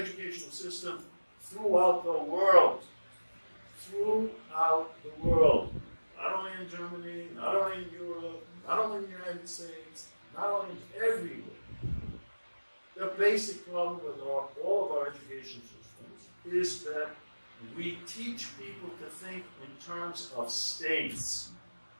system throughout the world, not only in Germany, not only in Europe, not only in the United States, not only everywhere, basic problem with all of our education systems is that we teach people to think in terms of states,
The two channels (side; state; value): both; inverted; correlation -1.00